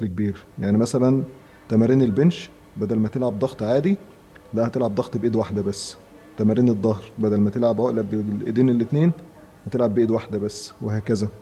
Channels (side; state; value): both; identical; correlation 1.00